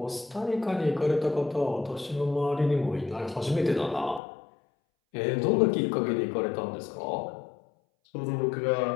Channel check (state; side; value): drops out; right; at 4.2 s